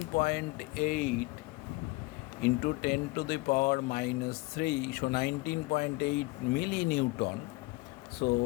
into 10 to the power minus 3. So 19.8 millinewton.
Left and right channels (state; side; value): quieter; right; 23.3 dB